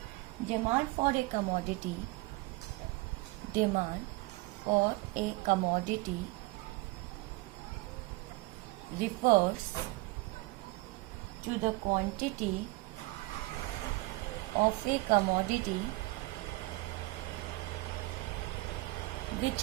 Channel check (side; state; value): left; quieter; 22.5 dB